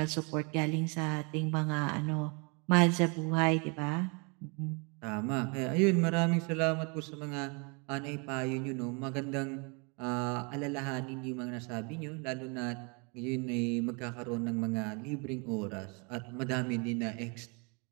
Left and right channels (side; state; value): left; quieter; 32.5 dB